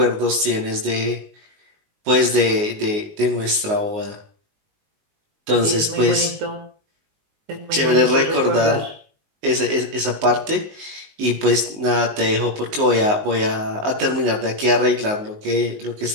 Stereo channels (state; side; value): late; left; 19 ms